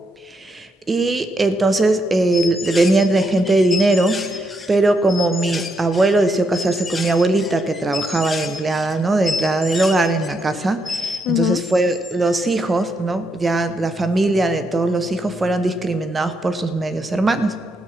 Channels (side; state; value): both; normal; correlation 0.79